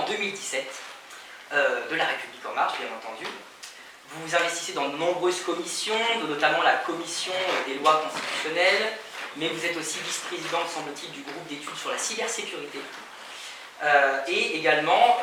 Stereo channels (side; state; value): both; identical; correlation 1.00